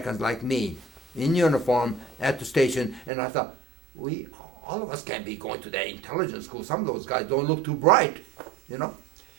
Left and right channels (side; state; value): left; drops out; at 3.1 s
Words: like me in uniform at the station, and I thought, all of us can't be going to that intelligence school. Some of those guys don't look too bright, you know.